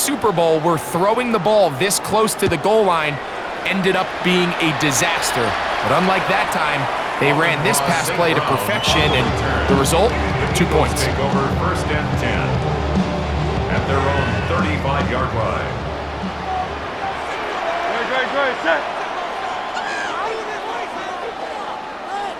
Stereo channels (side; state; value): both; identical; correlation 1.00